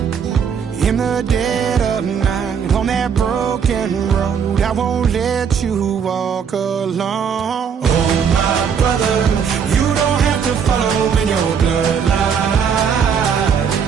in the dead of night on that broken road. I won't let you walk alone. Oh, my brother, you don't have to follow in your bloodline.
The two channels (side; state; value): left; quieter; 7.0 dB